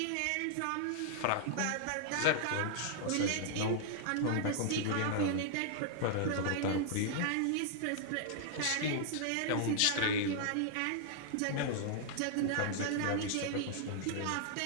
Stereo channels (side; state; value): both; different; correlation -0.01